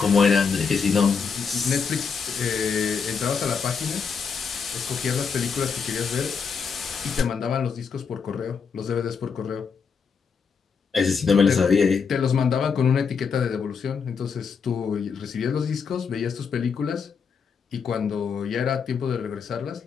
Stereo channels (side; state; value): right; quieter; 5.9 dB